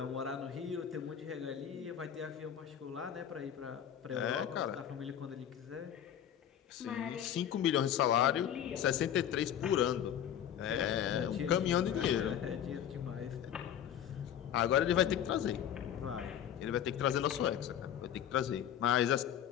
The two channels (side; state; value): right; quieter; 9.9 dB